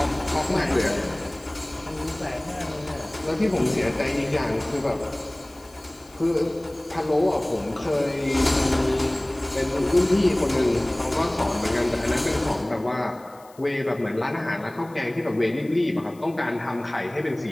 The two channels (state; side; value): noise; left; hiss, 27 dB below the sound